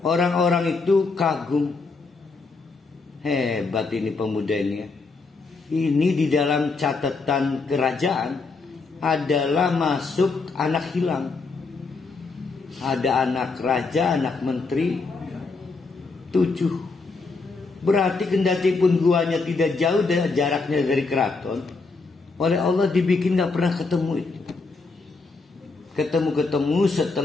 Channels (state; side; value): quieter; right; 4.1 dB